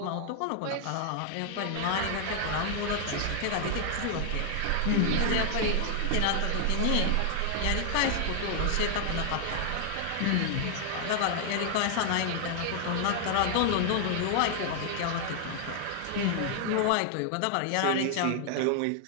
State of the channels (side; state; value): both; different; correlation 0.00